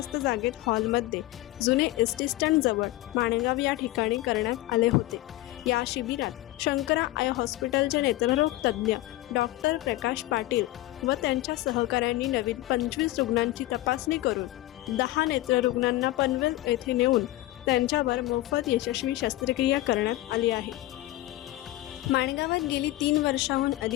जागेत हॉलमध्ये जुने एसटी स्टँड जवळ माणगाव या ठिकाणी करण्यात आले होते। या शिबिरात शंकरा आय हॉस्पिटलचे नेत्ररोग तज्ज्ञ डॉक्टर प्रकाश पाटील व त्यांच्या सहकाऱ्यांनी नवीन 25 रुग्णांची तपासणी करून 10 नेत्ररुग्णांना पनवेल येथे नेऊन त्यांच्यावर मोफत यशस्वी शस्त्रक्रिया करण्यात आली आहे। माणगावात गेली 3 वर्षांहून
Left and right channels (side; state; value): right; quieter; 17.1 dB